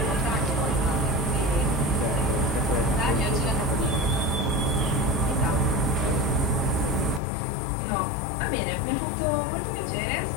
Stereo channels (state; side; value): drops out; right; at 7.2 s